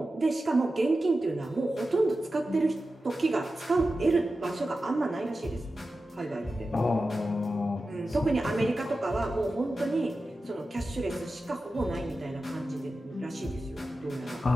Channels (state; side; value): normal; both; correlation 0.93